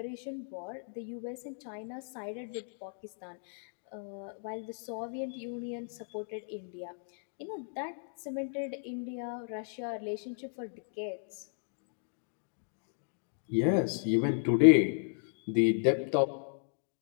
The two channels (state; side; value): silent; right; digital silence